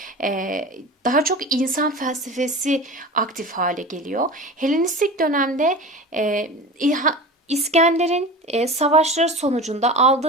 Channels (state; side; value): normal; both; correlation 0.33